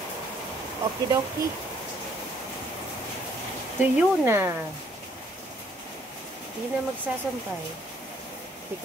Okidoki. Tuyo na. Hindi na magsasampay.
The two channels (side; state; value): both; normal; correlation 0.65